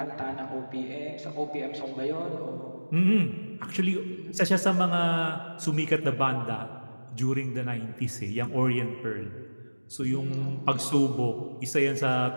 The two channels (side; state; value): both; inverted; correlation -1.00